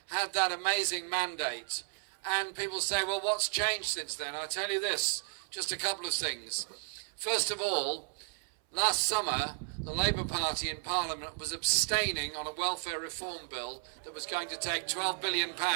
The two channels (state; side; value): silent; left; 55 dB below the other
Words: had that amazing mandate. And people say, well, what's changed since then? I'll tell you this, just a couple of things. First of all, last summer, the Labour Party in Parliament was abstaining on a welfare reform bill that was going to take £12 billion